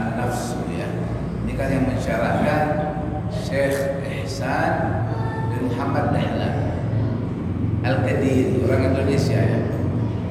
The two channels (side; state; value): both; identical; correlation 1.00